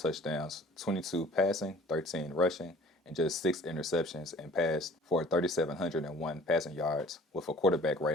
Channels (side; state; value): both; normal; correlation 0.49